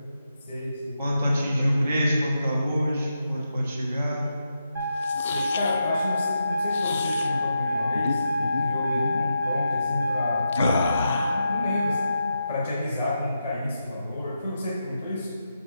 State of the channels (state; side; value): inverted; both; correlation -0.86